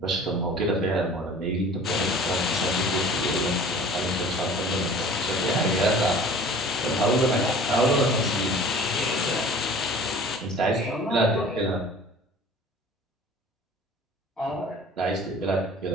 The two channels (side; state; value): both; normal; correlation 0.45